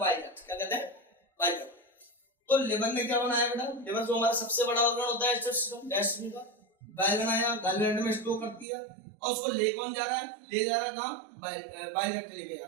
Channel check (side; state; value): left; drops out; at 8.7 s